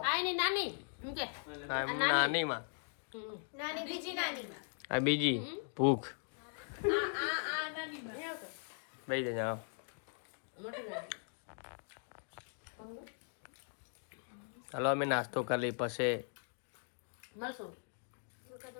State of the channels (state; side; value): silent; right; 52 dB below the other